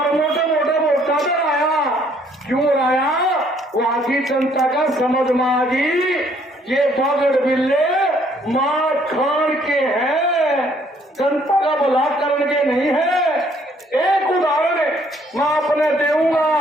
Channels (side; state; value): both; normal; correlation 0.64